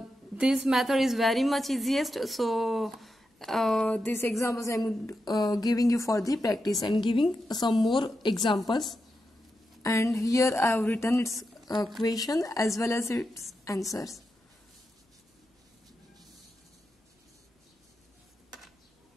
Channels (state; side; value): normal; both; correlation 0.88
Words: this method is very much easiest, so these examples I'm giving you for the practice and giving some more examples. And here I have written its question as well as its answers.